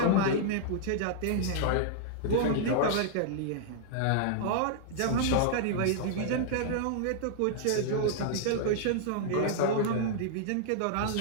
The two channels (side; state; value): both; different; correlation -0.01